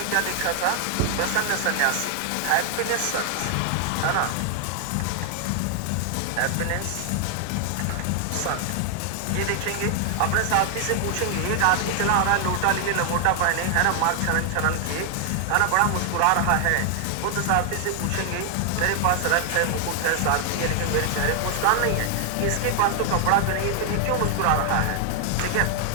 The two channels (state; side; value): different; both; correlation 0.00